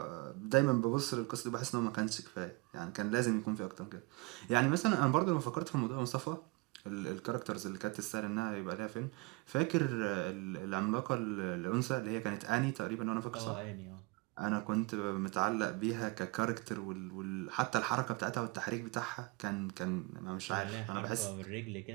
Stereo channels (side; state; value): left; quieter; 25.7 dB